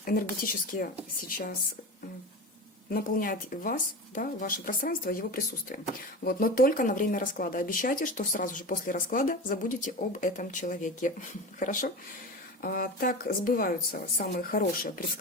энергетически сейчас наполняет вас, да, ваше пространство его присутствием. Вот, но только на время расклада. Обещайте, что сразу же после расклада забудете об этом человеке. Хорошо? Так сбываются самые хорошие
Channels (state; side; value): normal; both; correlation 0.27